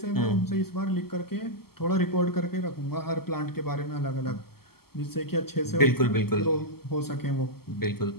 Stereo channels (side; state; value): right; late; 0.95 ms